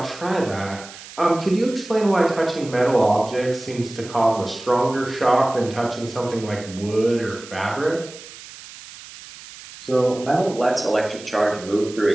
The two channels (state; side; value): noise; right; hiss, 16 dB below the sound